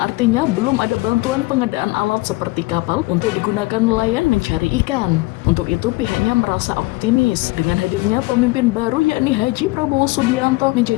belum ada bantuan pengadaan alat seperti kapal untuk digunakan nelayan mencari ikan. Untuk itu pihaknya merasa optimis dengan hadirnya pemimpin baru yakni Haji Prabowo Subianto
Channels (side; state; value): right; quieter; 22.3 dB